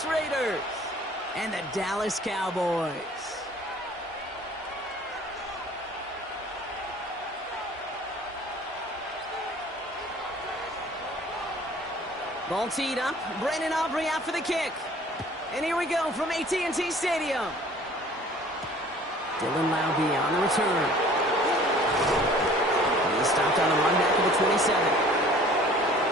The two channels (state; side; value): normal; both; correlation 0.51